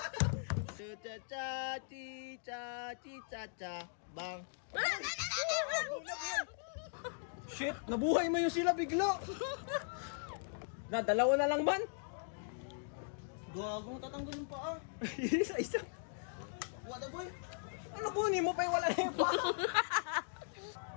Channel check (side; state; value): right; silent; digital silence